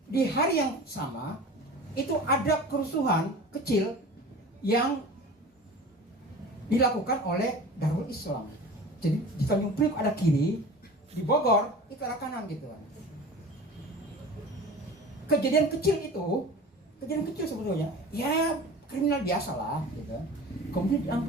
di hari yang sama itu ada kerusuhan kecil yang dilakukan oleh Darul Islam. Jadi di Tanjung Priok ada kiri, di Bogor itu ada kanan gitu kan. Kejadian kecil sebetulnya, ya kriminal biasa lah gitu. Kemudian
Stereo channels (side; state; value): both; normal; correlation 0.38